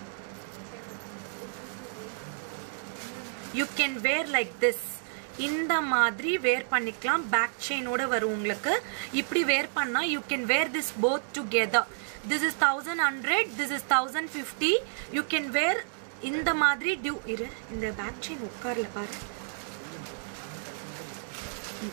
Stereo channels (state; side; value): silent; left; digital silence